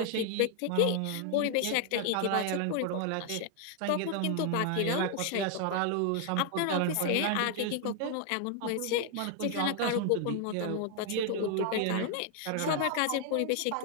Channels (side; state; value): both; different; correlation 0.00